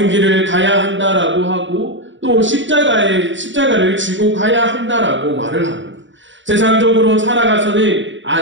길을 가야 한다라고 하고 또 십자가를 지고 가야 한다라고 말을 하고 세상적으로 살아가서는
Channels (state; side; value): late; left; 0.54 ms